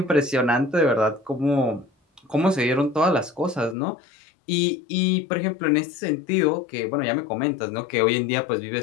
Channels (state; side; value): drops out; right; at 3.8 s